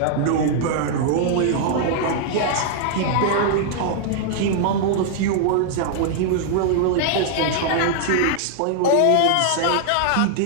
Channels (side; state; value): both; different; correlation -0.01